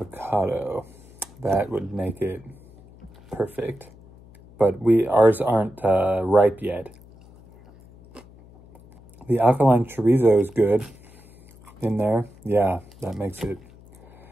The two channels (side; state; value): left; noise; hum, 24 dB below the sound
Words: That would make it perfect, but ours aren't ripe yet. The alkaline chorizo is good in there. Yeah, that makes it